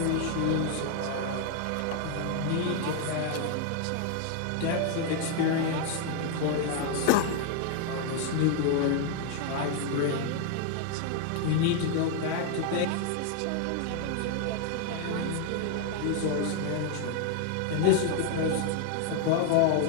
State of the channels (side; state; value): both; different; correlation 0.00